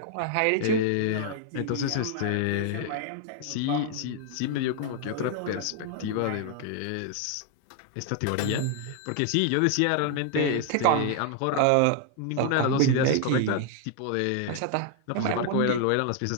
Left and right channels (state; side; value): different; both; correlation 0.00